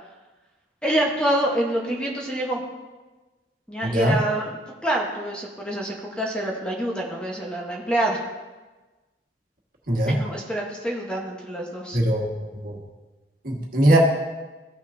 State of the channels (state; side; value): normal; both; correlation 0.67